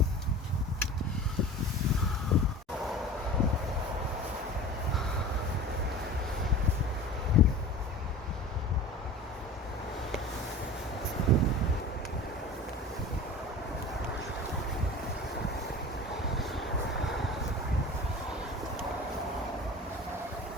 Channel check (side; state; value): both; normal; correlation 0.37